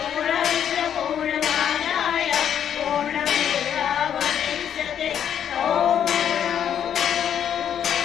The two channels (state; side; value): quieter; right; 9.2 dB